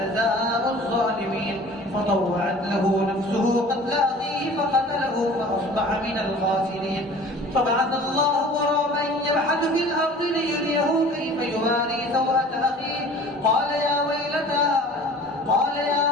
الظالمين. فطوعت له نفسه قتل أخيه فقتله فأصبح من الخاسرين. فبعث الله غرابا يبحث في الأرض ليريه كيف يواري سوءة أخيه قال يا ويلتى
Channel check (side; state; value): both; normal; correlation 0.45